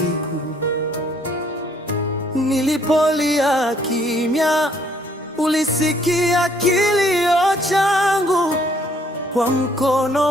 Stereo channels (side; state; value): both; normal; correlation 0.65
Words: Nilipolia kimya, ulisikia kilio changu, kwa